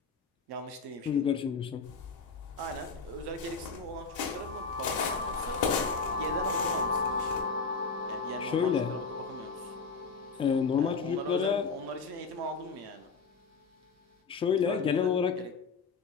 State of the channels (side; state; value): right; quieter; 4.8 dB